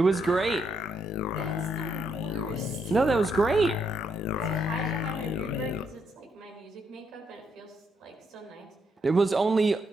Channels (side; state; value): both; normal; correlation 0.76